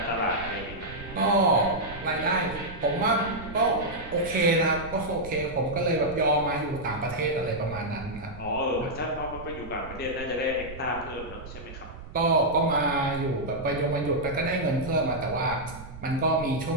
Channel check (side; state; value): right; noise; rumble, 14 dB below the sound